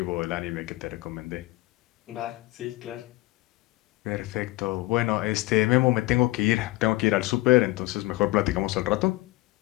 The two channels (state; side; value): quieter; right; 20.8 dB